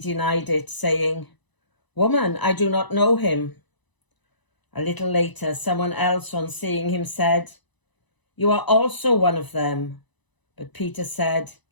it, saying, "Woman, I do not know him." A little later, someone else, on seeing him, said, "You are also one of them." But Peter said,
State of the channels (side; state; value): right; late; 1.0 ms